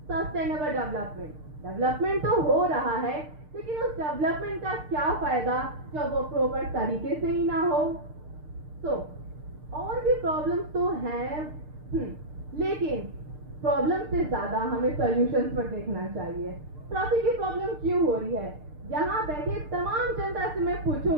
सस्टेनेबल डेवलपमेंट तो हो रहा है, लेकिन उस डेवलपमेंट का क्या फायदा जब वो प्रॉपर तरीके से ही ना हो। तो और भी प्रॉब्लम्स तो हैं, लेकिन प्रॉब्लम से ज्यादा हमें सॉल्यूशंस पर देखना चाहिए। ट्रैफिक की प्रॉब्लम क्यों हो रही है? यहाँ बैठे तमाम जनता से मैं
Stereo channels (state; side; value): late; left; 6.6 ms